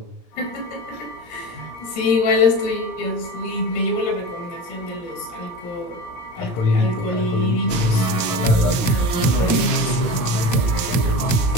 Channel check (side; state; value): right; late; 17 ms